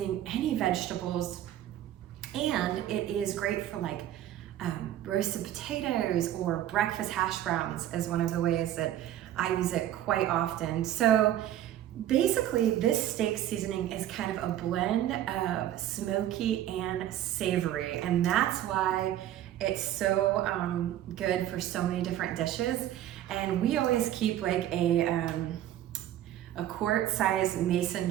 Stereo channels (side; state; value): left; quieter; 12.2 dB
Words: any vegetables. And it is great for like roasted potatoes or breakfast hash browns is one of the ways that I use it quite often. So basically this steak seasoning is kind of a blend of smoky and savory, and that's why it's so good for so many different dishes. And we always keep like a quart-sized mason